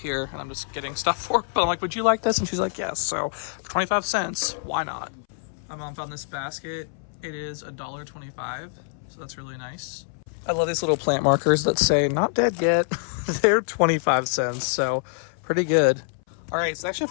and I'm just getting stuff for her, but I'm would you like this? And she's like, yes. So for 25 cents, why not? My mom found this basket. It is $1.25, so that's really nice. I love these little plant markers that say not dead yet. They're 25 cents, so pretty good. All right, so they actually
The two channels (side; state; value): right; silent; 61 dB below the other